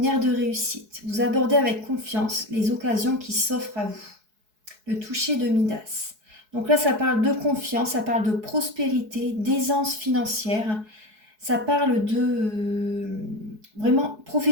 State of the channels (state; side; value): late; left; 4.7 ms